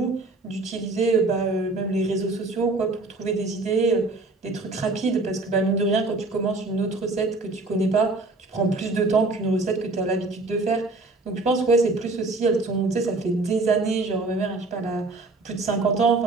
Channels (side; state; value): left; quieter; 3.2 dB